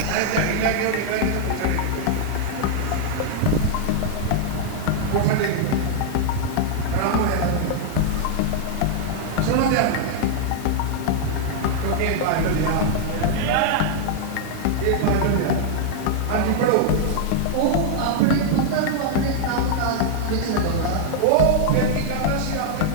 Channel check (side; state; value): both; different; correlation -0.01